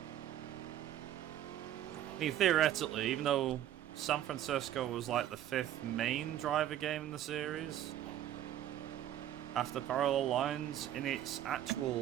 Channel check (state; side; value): quieter; left; 11.9 dB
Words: I mean, theoretically, even though San Francisco was like the 5th main driver game in the series, after Parallel Lines, in its